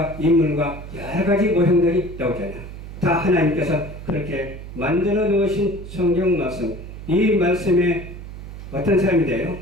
인물과 여러 가지 모형들이 나오잖아요. 다 하나님께서 그렇게 만들어 놓으신 성경 말씀, 이 말씀에 어떤 사람이 돼요?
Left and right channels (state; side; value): noise; right; hum, 12 dB below the sound